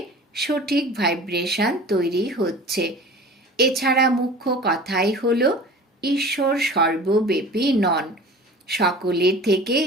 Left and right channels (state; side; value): normal; both; correlation 0.40